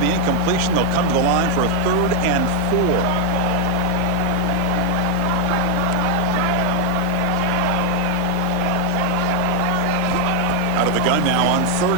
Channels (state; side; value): different; both; correlation 0.01